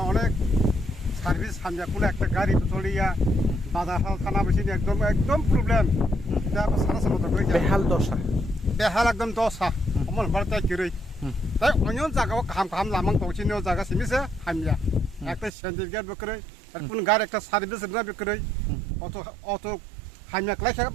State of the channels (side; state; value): left; drops out; at 15.5 s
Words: अनेक सार्भिस हान्जाखौनो একটা গাড়ি চলিয়া বাজার থানা বসিনি একদম প্রবলেম दा সারা সারা তো বেহাল একদম দশা অমল বারতা কিরই তাই অন্য জায়গাও খাম লামাং পৌঁছিনো জায়গা সিমিছে হামিয়া একটা সেন্টার গেট বকরে আর কোন গাড়ি একটা সার্ভিস না বকরে অত হামিয়া ক্লাই